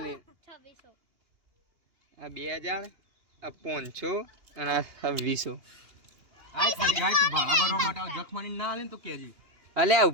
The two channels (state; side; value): late; left; 2.8 ms